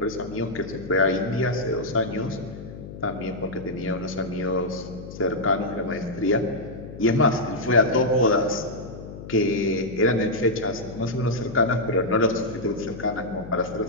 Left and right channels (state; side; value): noise; left; hum, 12 dB below the sound